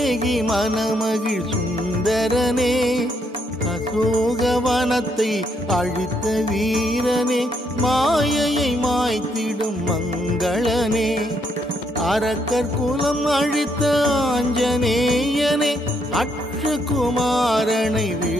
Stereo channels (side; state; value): both; normal; correlation 0.75